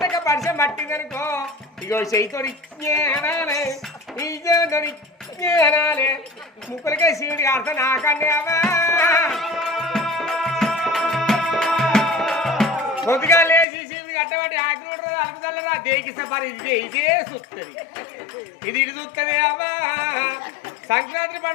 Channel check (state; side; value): drops out; right; at 13.7 s